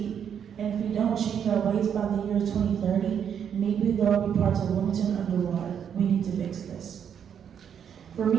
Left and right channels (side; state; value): left; quieter; 8.2 dB